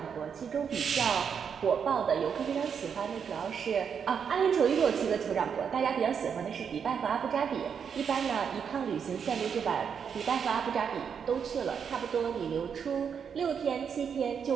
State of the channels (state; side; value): quieter; left; 7.1 dB